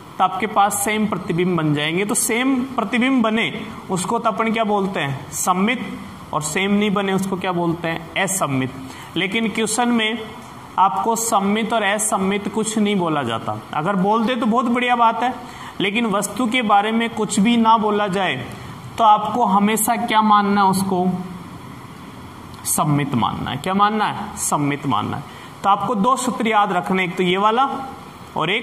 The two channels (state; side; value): identical; both; correlation 1.00